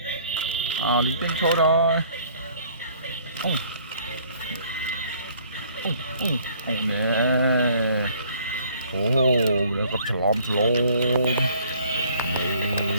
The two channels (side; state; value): both; inverted; correlation -0.58